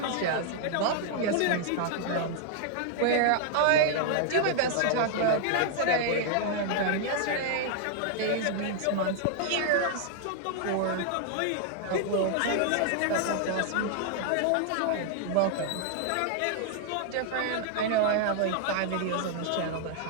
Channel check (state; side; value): different; both; correlation 0.00